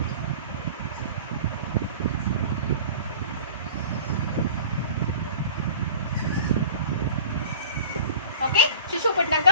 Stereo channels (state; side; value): inverted; both; correlation -0.43